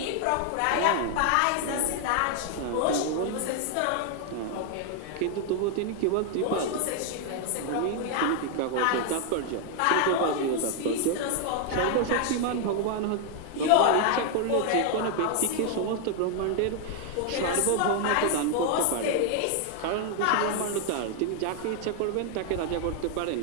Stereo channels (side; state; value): both; different; correlation 0.00